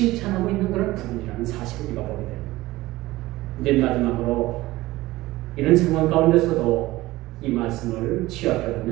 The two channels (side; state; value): left; quieter; 18.3 dB